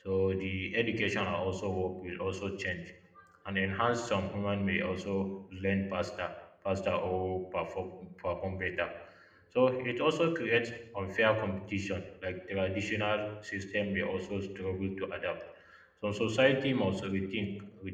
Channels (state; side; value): identical; both; correlation 1.00